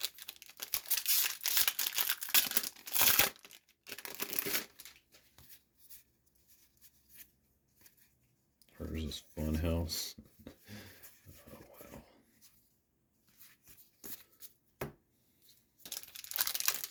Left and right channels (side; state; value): both; identical; correlation 1.00